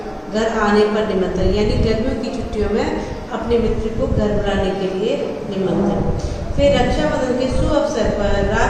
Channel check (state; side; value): identical; both; correlation 1.00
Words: घर आने पर निमंत्रण, यानी गर्मियों की छुट्टियों में अपने मित्र को घर बुलाने के लिए निमंत्रण। फिर रक्षाबंधन के शुभ अवसर पर